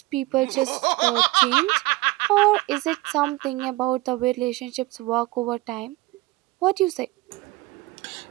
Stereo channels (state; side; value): quieter; left; 20.7 dB